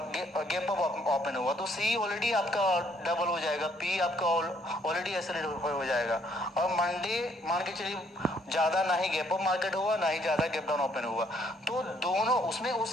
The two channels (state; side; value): normal; both; correlation 0.67